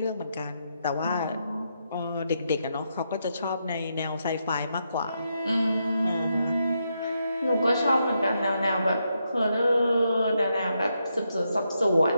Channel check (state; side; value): inverted; both; correlation -0.82